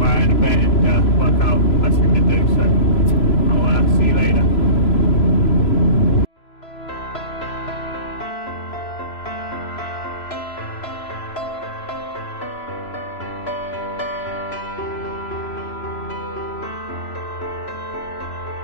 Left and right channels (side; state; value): right; late; 3.0 ms